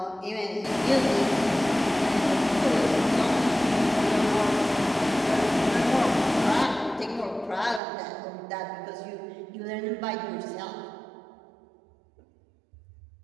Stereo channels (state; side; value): drops out; left; at 7.8 s